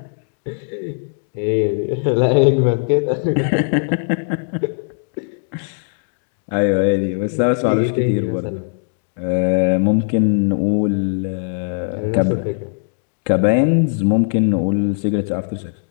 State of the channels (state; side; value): silent; right; digital silence